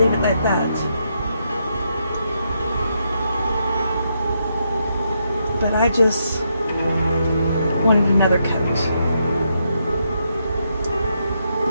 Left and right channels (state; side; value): inverted; both; correlation -0.79